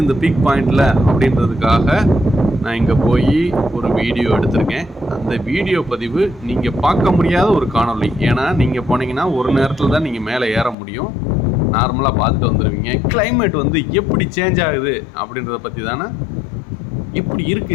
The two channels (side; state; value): right; drops out; at 10.8 s